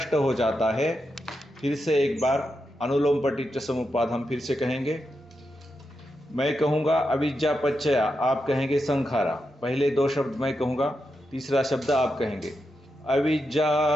हो जाता है। फिर से एक बार अनुलोम पटिच्च समुपपाद हम फिर से कहेंगे। मैं कहूँगा अविद्या पच्चया, आप कहेंगे संखारा। पहले दो शब्द मैं कहूँगा, तीसरा शब्द आप कहेंगे। अविद्या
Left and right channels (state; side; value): normal; both; correlation 0.86